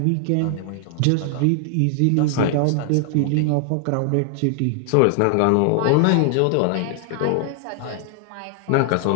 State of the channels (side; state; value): both; different; correlation 0.00